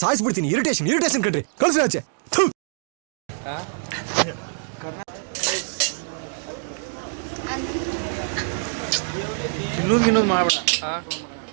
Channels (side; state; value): left; silent; digital silence